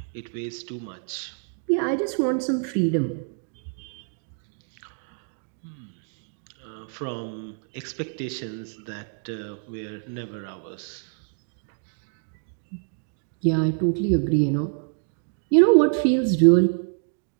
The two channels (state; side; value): silent; left; 60 dB below the other